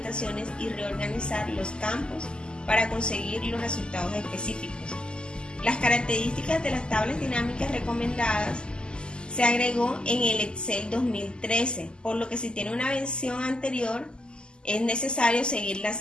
y reorganizar los campos para conseguir los resultados específicos. Las características de las tablas dinámicas recomendadas se agregó en el Excel 2013, por lo que si tiene una versión anterior, es necesario seguir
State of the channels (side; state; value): right; late; 0.048 ms